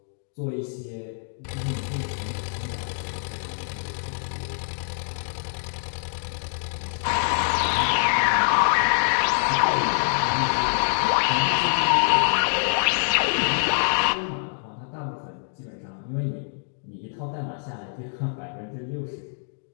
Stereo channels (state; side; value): silent; right; 62 dB below the other